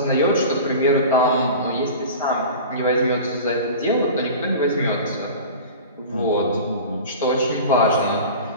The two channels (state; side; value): inverted; both; correlation -0.35